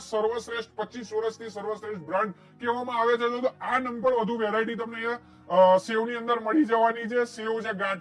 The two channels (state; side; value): identical; both; correlation 1.00